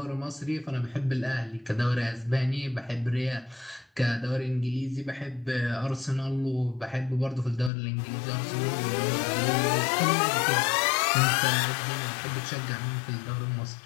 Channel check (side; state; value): right; drops out; at 7.7 s